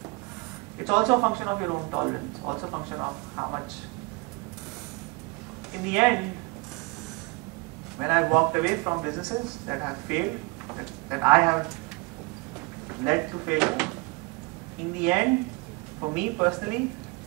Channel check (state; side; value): quieter; left; 27.1 dB